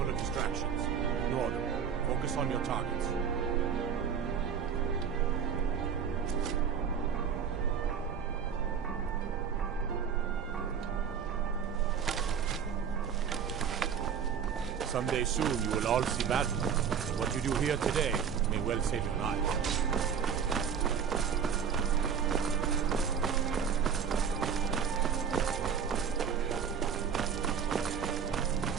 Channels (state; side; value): quieter; left; 7.2 dB